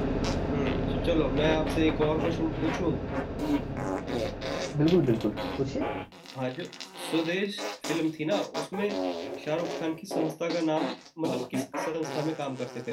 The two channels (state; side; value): identical; both; correlation 1.00